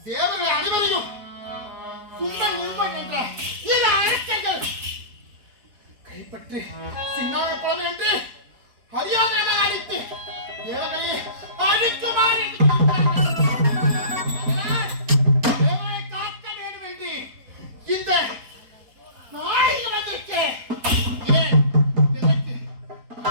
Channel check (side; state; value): left; late; 4.7 ms